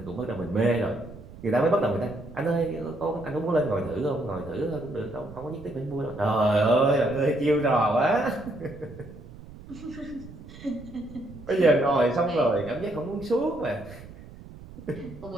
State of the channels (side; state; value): right; noise; rumble, 17 dB below the sound